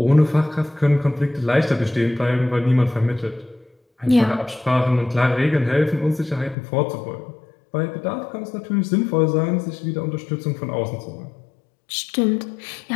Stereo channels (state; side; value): drops out; right; at 6.6 s